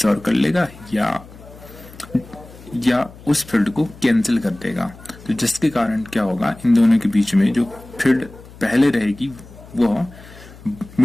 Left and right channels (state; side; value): noise; left; hum, 20 dB below the sound